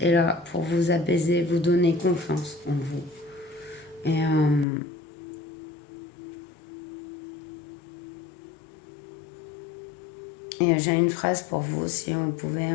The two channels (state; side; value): drops out; right; at 4.7 s